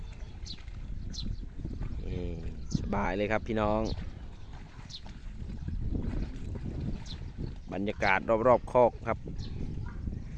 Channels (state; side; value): identical; both; correlation 1.00